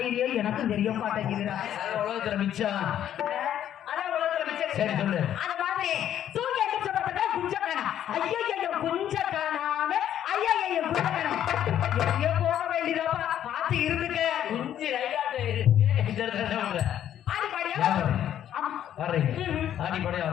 எனக்கும் தெரிய மாட்டேங்குதுடா. உலகத்துல மிச்சம், அதான் உலகத்துல மிச்சம். சரி சொல்லு. அந்த மாதிரி தூக்கி எந்திரிச்ச பார்த்தா குஞ்ச காணா. ஐயோ குஞ்ச காணாம ஐயா குஞ்ச காணாம எங்கேயோ போக வேண்டியதாப்பா, பார்த்து இருந்துக்க. குஞ்சு ரைட்டாட்டு இருக்கு. ஆடி பாடியா வர்றீங்க, ஆடி பாடியா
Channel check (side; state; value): right; quieter; 10.7 dB